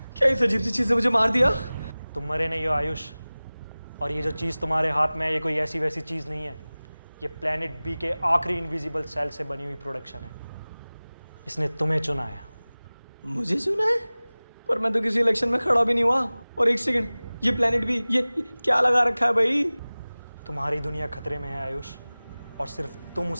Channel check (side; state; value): both; inverted; correlation -0.99